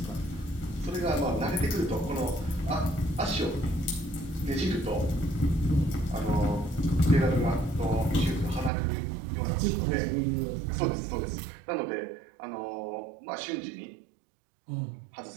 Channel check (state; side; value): drops out; left; at 8.7 s